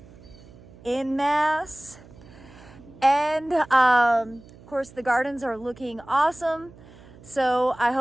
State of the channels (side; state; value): right; noise; hum, 22 dB below the sound